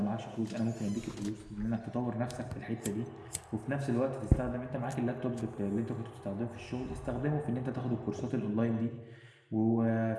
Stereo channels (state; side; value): identical; both; correlation 1.00